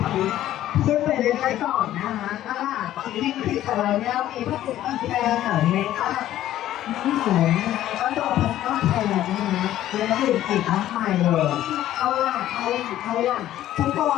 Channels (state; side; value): quieter; right; 13.0 dB